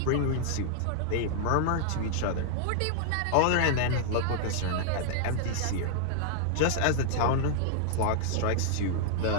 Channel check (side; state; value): both; different; correlation -0.01